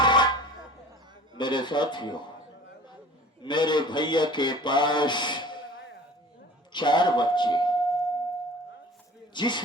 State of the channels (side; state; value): both; normal; correlation 0.43